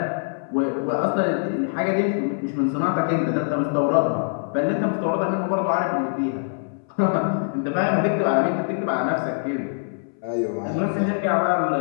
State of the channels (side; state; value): right; silent; 63 dB below the other